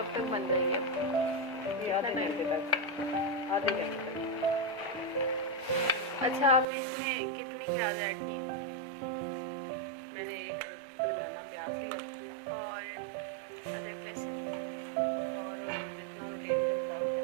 तक बन जाएगी? ये आधे घंटे तक। अच्छा, आपने इसमें कितनी प्याज ऐड की? मैंने एक बनाना प्याज लिया और अदरक लहसुन और जितना मैं तेल के मुताबिक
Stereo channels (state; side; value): drops out; left; at 6.7 s